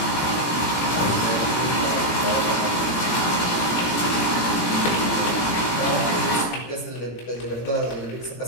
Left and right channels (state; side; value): late; right; 17 ms